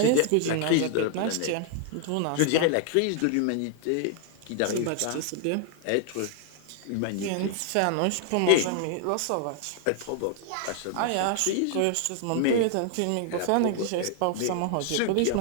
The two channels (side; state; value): both; different; correlation 0.00